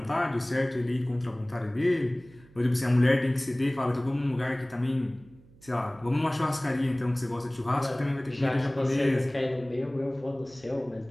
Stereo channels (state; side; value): noise; right; hum, 25 dB below the sound